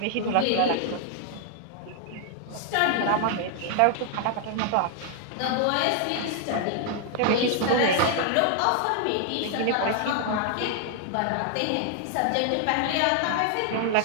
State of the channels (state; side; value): different; both; correlation 0.00